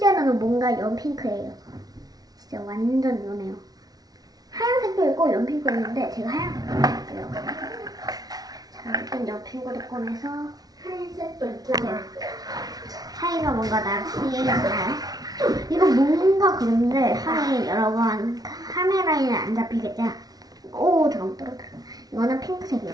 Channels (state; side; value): late; left; 0.19 ms